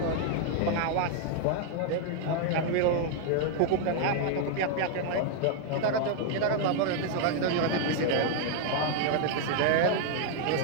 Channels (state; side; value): different; both; correlation 0.00